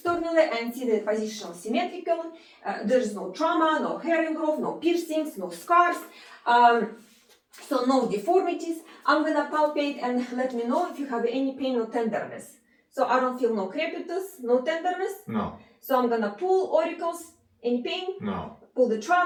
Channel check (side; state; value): both; identical; correlation 1.00